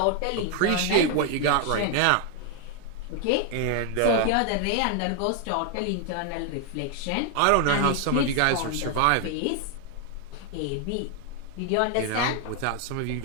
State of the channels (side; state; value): both; different; correlation 0.00